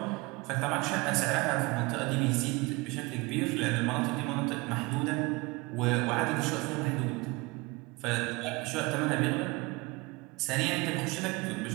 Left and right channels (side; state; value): left; quieter; 24.7 dB